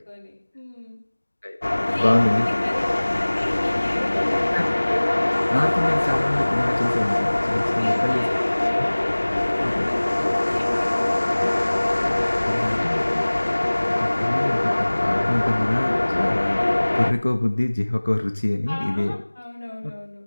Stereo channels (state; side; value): inverted; both; correlation -1.00